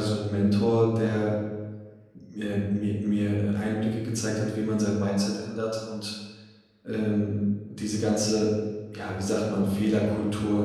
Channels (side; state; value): both; identical; correlation 1.00